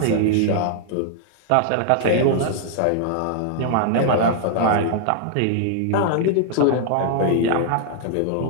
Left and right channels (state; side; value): different; both; correlation -0.01